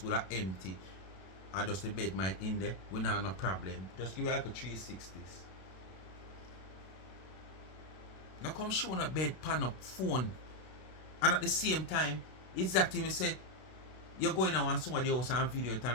will be empty and just the bed might in there, we not have no problem. Just give you like a 360s. Now come show a bed pan up phone and at the same time, exactly me say you're going to want somebody else and video it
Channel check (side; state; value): right; late; 32 ms